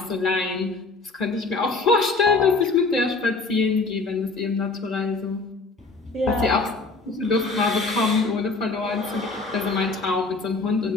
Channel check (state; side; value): quieter; right; 3.7 dB